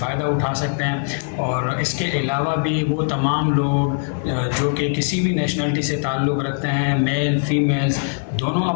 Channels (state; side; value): silent; right; 61 dB below the other